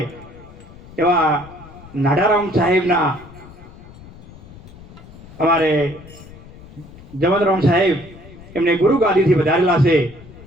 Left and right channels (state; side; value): noise; left; rumble, 19 dB below the sound